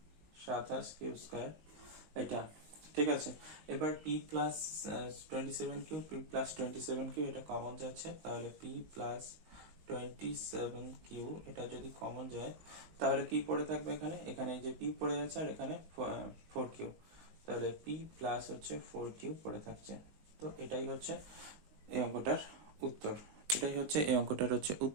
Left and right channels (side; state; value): left; late; 19 ms